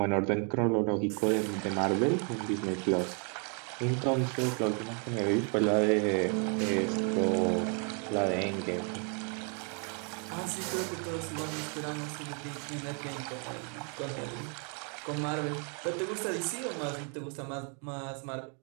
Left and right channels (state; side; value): quieter; left; 39.5 dB